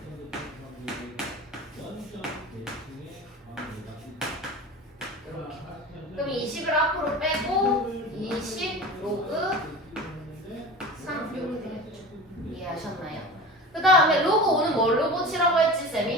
이렇게. 그럼 20을 앞으로 빼고 20 로그 3 이렇게 되겠죠. 이해하셨나요? 그 다음에 로그 5는 뭘로 고치라고 했지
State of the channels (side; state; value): both; normal; correlation 0.34